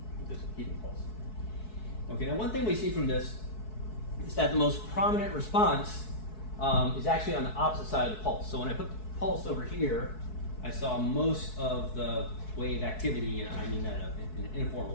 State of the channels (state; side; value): late; right; 4.6 ms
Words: with this heating pulse. Okay, now one thing we see from this is that the most prominent response is actually on the opposite side of the pulse. So when I put the pulse over here, I saw most of the wave activity, and I mean that in an